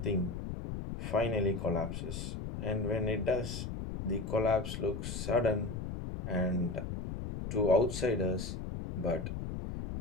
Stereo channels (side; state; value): left; noise; rumble, 5 dB below the sound